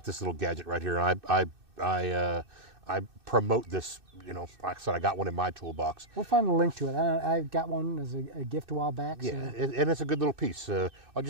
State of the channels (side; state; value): left; late; 2.6 ms